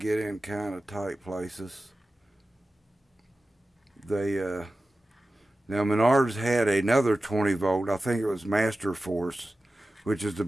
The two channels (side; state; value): both; normal; correlation 0.95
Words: in kind of tight places. Now Menards had another 20 volt, I think it was Master Force, which is the